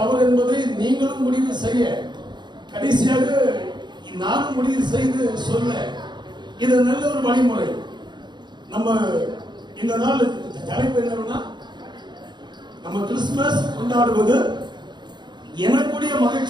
என்பதை நீங்களும் முடிவு செய்ய, கடைசியாக நானும் முடிவு செய்து சொல்ல, இது நல்ல ஒரு வழிமுறை. நம்ம இந்த நாள் தலைப்பு என்னன்னா, நம்ம கிறிஸ்துமஸ் கொண்டாடுவது எனக்குடைய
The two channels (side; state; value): left; late; 0.21 ms